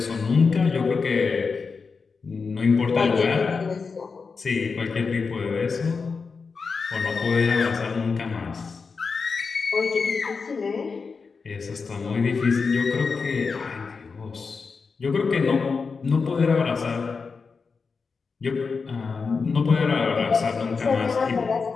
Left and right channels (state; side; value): quieter; right; 4.9 dB